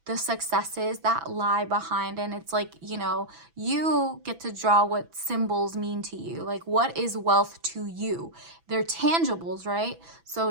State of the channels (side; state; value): left; late; 6.0 ms